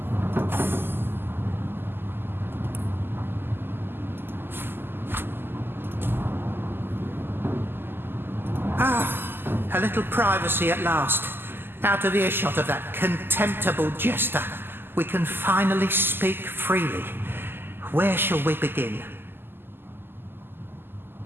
A little privacy at last. Out of earshot of that contemptible jester. We can finally speak freely. Where shall we begin?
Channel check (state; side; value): late; left; 0.10 ms